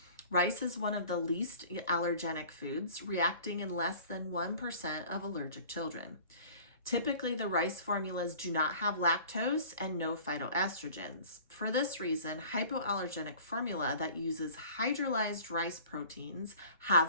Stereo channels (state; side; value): inverted; both; correlation -0.46